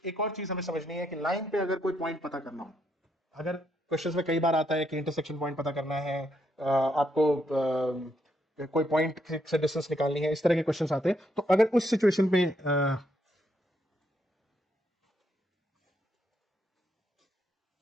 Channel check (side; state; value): both; normal; correlation 0.76